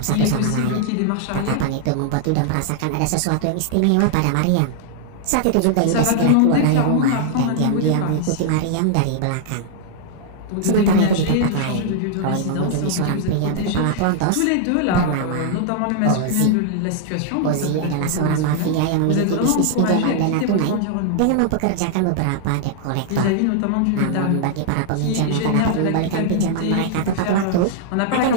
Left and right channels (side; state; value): both; different; correlation -0.01